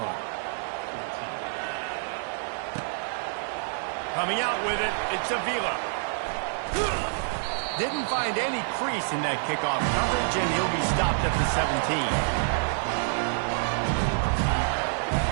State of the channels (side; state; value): left; silent; digital silence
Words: Coming out with it, it's Avila. Didn't find any crease in that kickoff coverage, and he'll be stopped at the 17.